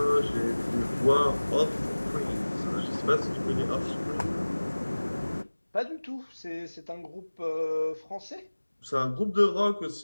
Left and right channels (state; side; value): inverted; both; correlation -1.00